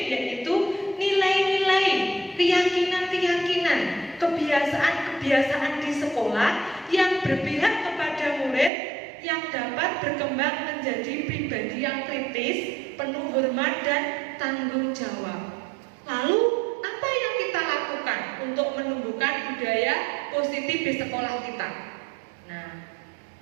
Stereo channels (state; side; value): drops out; left; at 8.7 s